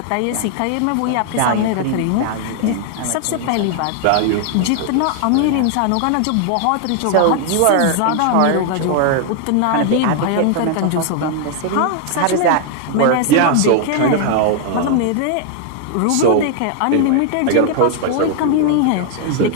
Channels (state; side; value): different; both; correlation 0.00